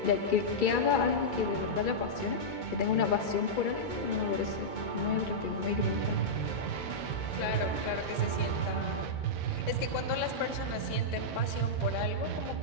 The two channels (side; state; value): right; late; 2.2 ms